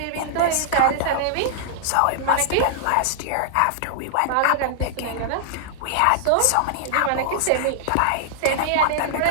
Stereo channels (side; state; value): both; different; correlation -0.01